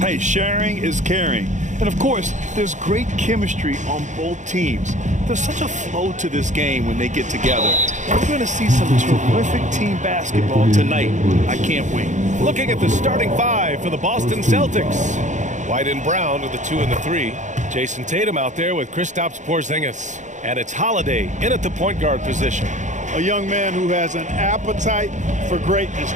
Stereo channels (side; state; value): left; late; 0.35 ms